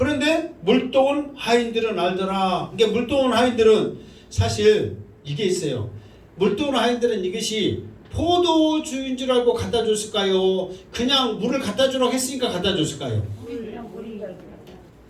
물떠온 하인들은 알더라. 그러니까 물떠온 하인들은 사실 이게 있어요. 물떠온 하인들은 이것이 포도주인 줄 알고 갖다 줬을까요? 그냥 물을 갖다 주라고 했으니까 갖다 줬을까요? 그냥 물인 줄 알고.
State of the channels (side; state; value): both; identical; correlation 1.00